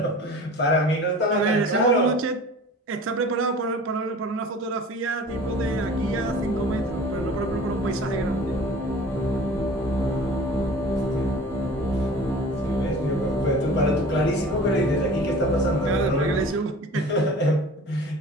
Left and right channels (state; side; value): normal; both; correlation 0.42